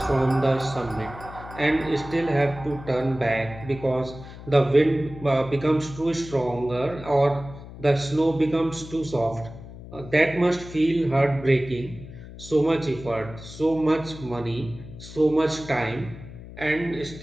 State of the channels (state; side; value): noise; left; hum, 15 dB below the sound